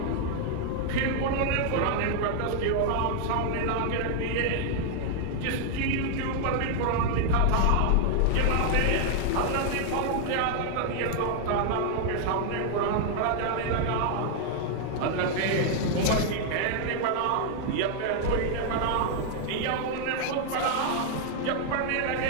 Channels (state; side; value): different; both; correlation 0.00